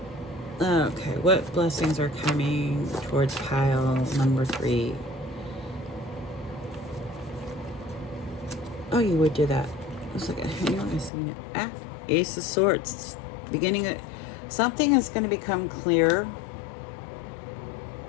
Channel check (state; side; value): drops out; right; at 11.1 s